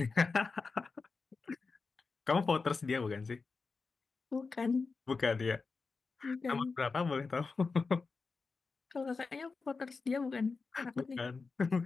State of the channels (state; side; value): quieter; right; 4.4 dB